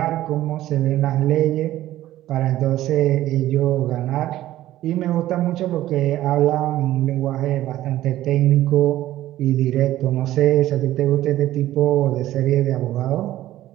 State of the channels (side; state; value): left; quieter; 14.4 dB